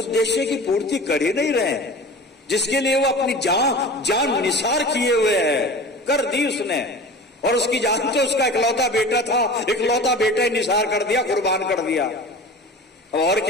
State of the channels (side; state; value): both; normal; correlation 0.36